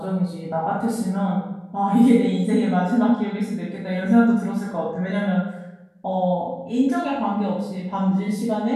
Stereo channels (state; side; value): identical; both; correlation 1.00